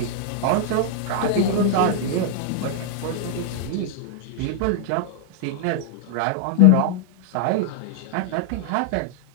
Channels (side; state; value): both; different; correlation 0.00